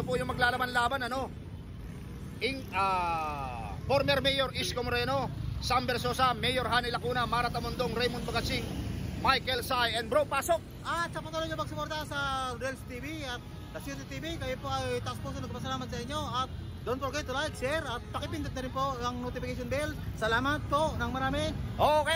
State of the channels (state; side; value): identical; both; correlation 1.00